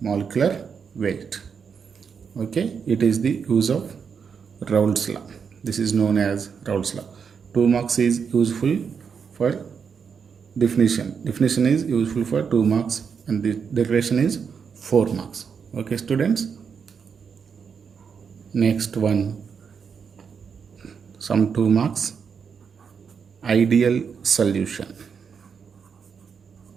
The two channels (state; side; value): quieter; left; 6.4 dB